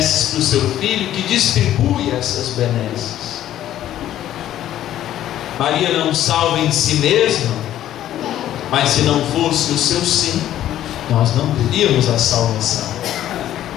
do seu filho, que distribui essas benesses. Maria não salva em si mesma, mas se não fosse o seu sim, nós não teríamos a salvação.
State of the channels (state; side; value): quieter; right; 12.3 dB